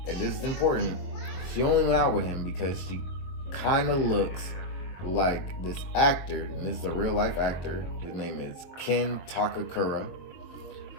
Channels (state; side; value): late; right; 22 ms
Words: and this is important, she only went out with him because she kind of looks like this actor, and this is a real life actor. His name is Ken Takakura,